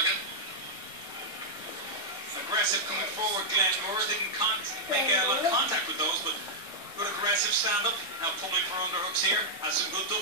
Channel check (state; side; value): normal; both; correlation -0.06